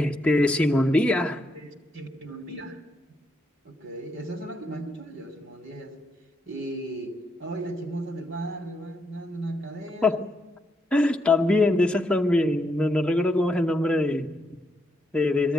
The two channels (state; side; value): normal; both; correlation 0.79